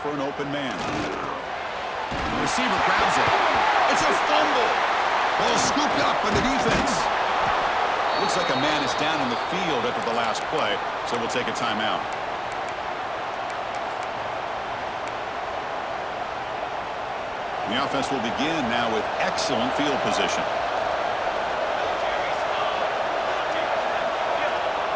an open man. The receiver grabs it. It's a fumble. Ball scooped up by the defense. Looks like a man is down in the field after the last play, so we'll take a timeout. The offense will begin now with excellent field position.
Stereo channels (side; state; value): both; identical; correlation 1.00